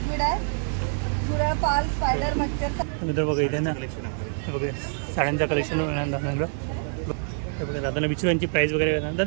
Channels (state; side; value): silent; left; 61 dB below the other